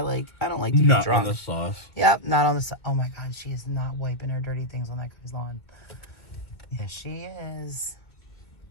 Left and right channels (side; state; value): right; late; 1.8 ms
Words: don't like to be Not drunk. on the sauce. Yep, not on the sauce. Oh my God, she is not wiping her dirty things on that guy's lawn. Yes, she is.